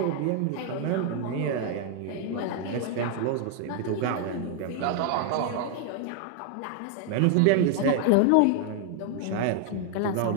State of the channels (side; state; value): both; different; correlation 0.01